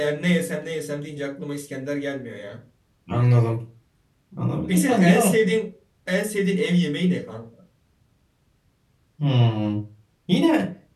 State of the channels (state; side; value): identical; both; correlation 1.00